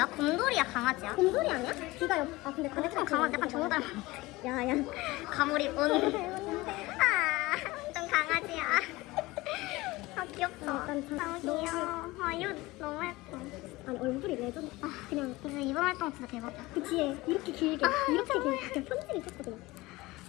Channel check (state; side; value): quieter; right; 20.5 dB